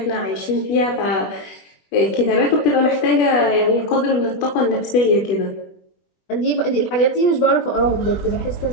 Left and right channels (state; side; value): late; right; 21 ms